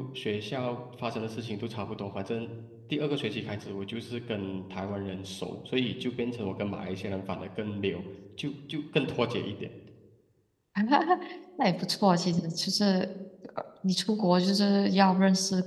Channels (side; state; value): both; identical; correlation 1.00